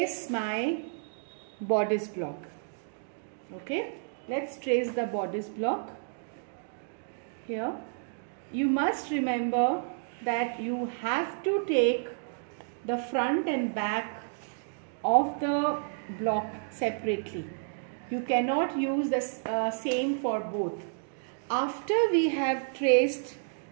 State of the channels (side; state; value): left; silent; digital silence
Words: my bodice block. Okay, let's trace the bodice block here. You must remember that you have to take the front and back of the block separately. You cannot use the same for both. After we have traced